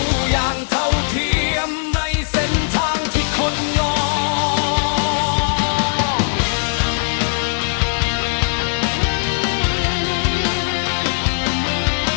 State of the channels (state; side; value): silent; right; digital silence